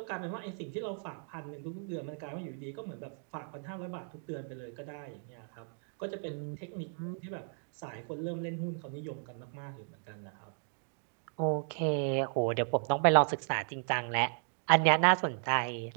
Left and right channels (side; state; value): left; silent; 55 dB below the other